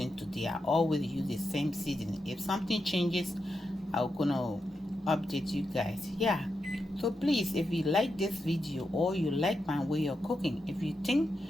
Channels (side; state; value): both; normal; correlation 0.87